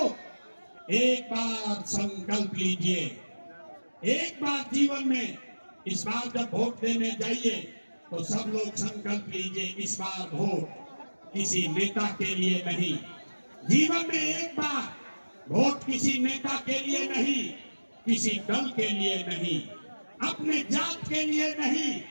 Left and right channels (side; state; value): both; inverted; correlation -1.00